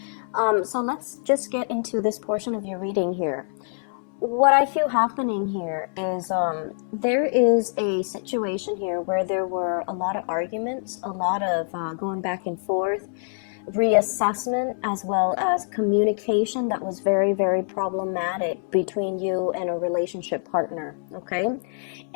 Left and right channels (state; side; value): silent; right; 62 dB below the other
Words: So let's just get into this portion of your reading here. What I feel happening here is there is a situation here where there were a lot of arguments, a lot of going back and forth, reassessment, as well as communication that was very, very problematic between you and a relationship partner. Okay.